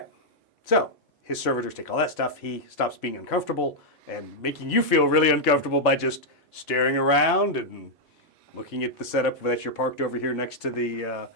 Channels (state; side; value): normal; both; correlation -0.04